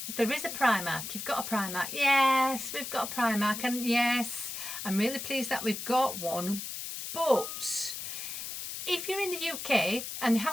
there is a Primark. You've got a Primark. Yes, we've got a Primark. And yes, I'm really pleased that we've got one. But if you're in the UK and they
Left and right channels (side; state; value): left; noise; hiss, 7 dB below the sound